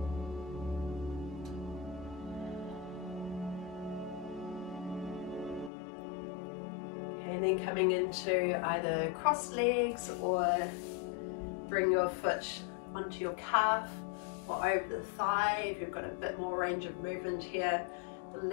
then coming into either crossed legs or bring your foot onto your calf or over the thigh if you've got a bit more range of movement here. The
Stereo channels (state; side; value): drops out; right; at 5.7 s